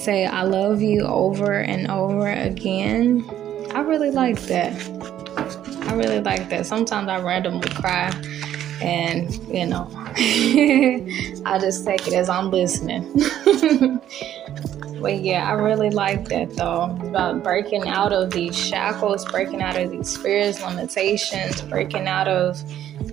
I love you over and over again. I really like that. Sometimes I randomly cry and, I just take it as I'm listening. But I really like that though. It's about breaking out of these shackles, breaking out of these fears, limitations, breaking out of,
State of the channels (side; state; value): left; quieter; 11.3 dB